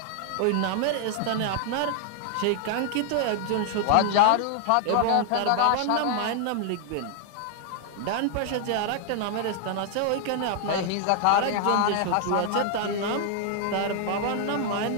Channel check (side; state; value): both; different; correlation 0.00